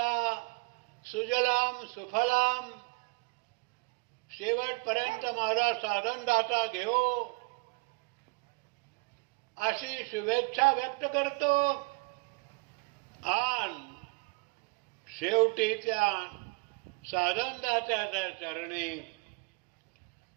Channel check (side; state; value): left; quieter; 30.2 dB